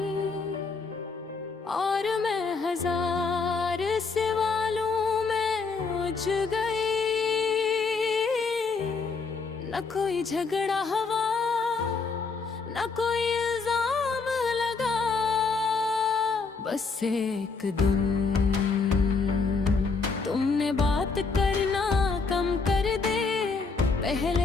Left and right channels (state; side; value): quieter; right; 4.6 dB